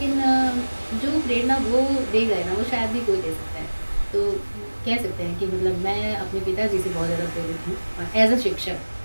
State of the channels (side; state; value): both; inverted; correlation -1.00